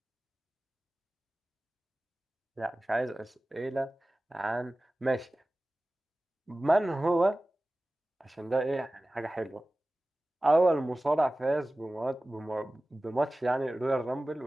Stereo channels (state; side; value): normal; both; correlation 0.97